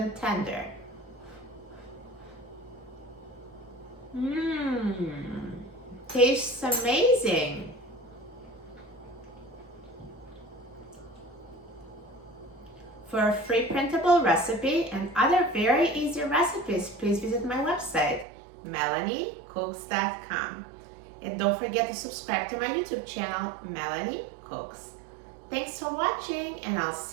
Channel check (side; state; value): left; drops out; at 18.2 s